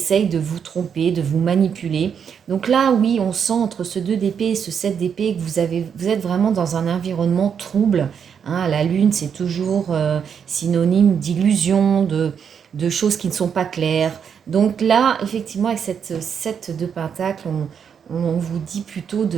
de vous tromper, de vous manipuler. Donc là oui, on sent entre ce 2 d'épée et ce 7 d'épée que vous êtes vraiment dans un environnement trouble. Hein, la lune c'est toujours synonyme d'illusion, de choses qui ne sont pas claires. Donc là effectivement avec cette 7 de pentacle, on vous dit plutôt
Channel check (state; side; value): quieter; left; 7.4 dB